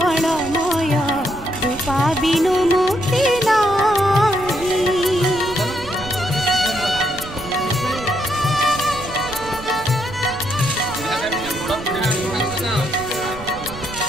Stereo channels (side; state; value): right; noise; rumble, 15 dB below the sound